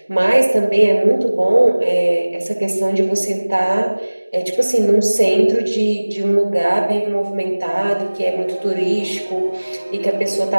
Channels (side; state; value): both; inverted; correlation -1.00